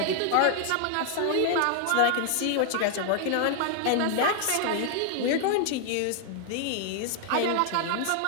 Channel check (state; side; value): different; both; correlation 0.00